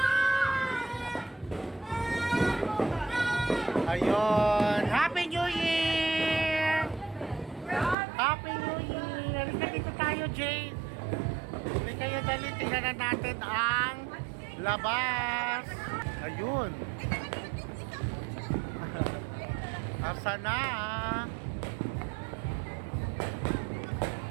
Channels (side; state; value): left; drops out; at 8.0 s